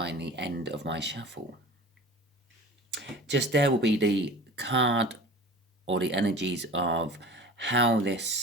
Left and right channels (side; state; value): both; normal; correlation 0.38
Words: the end of my shuffle. Just there will be the card or the energies of how